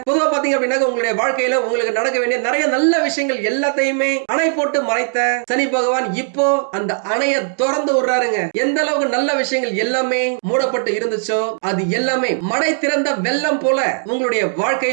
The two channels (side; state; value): left; silent; digital silence